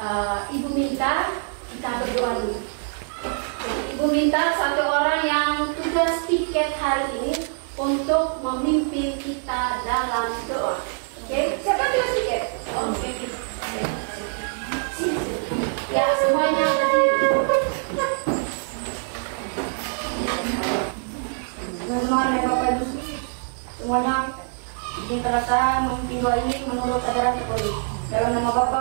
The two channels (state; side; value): silent; left; 62 dB below the other